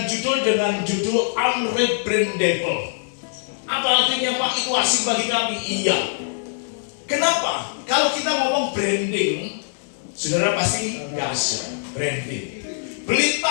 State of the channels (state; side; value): silent; right; digital silence